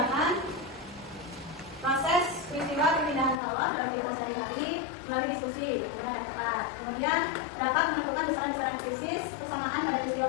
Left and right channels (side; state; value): right; drops out; at 3.4 s